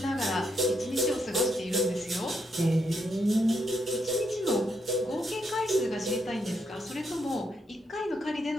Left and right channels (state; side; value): normal; both; correlation 0.77